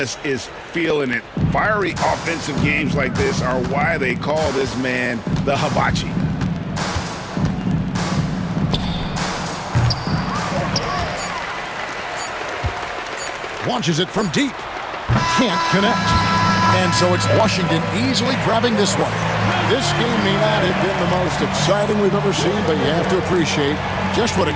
is feeling it. Fiery offensive games like this are why they call this man the hibachi. Launches it from deep. Can't connect. And so it's Washington easily grabbing this one. This game may not have been the most exciting we've ever seen, but you have to appreciate just what a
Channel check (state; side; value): identical; both; correlation 1.00